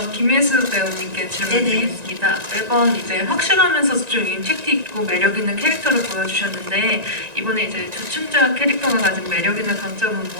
김혜수 배우님께 질문드리겠습니다. 매번 이제 확실하면서도 좀 임팩트 있고 매력 있는 캐릭터를 보여주셨는데 이번에 이제 조춘자 캐릭터가 가진 매력 있는 강점은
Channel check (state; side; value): late; left; 1.9 ms